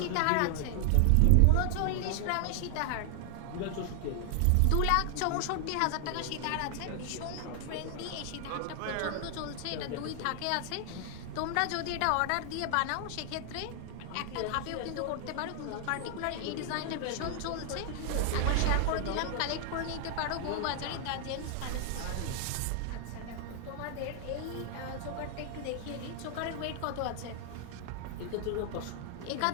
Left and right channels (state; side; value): different; both; correlation 0.00